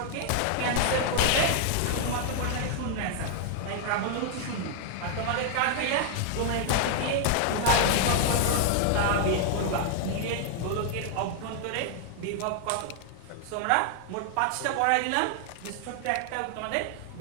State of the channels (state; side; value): different; both; correlation 0.00